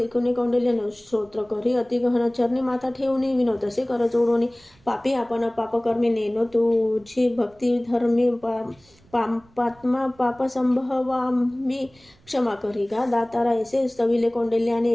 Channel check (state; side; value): noise; right; rumble, 30 dB below the sound